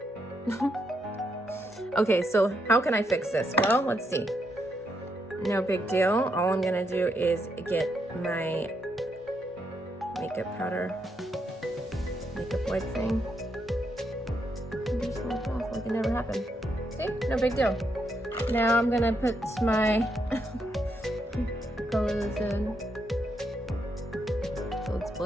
Okay, so how can I fix this? Well, let's see. No big deal. All I'm gonna do is get my makeup powder, makeup wipe thing, and just wipe off like it never happened. See? No big deal. Now I'm gonna put my color this in. So let's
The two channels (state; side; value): normal; both; correlation 0.79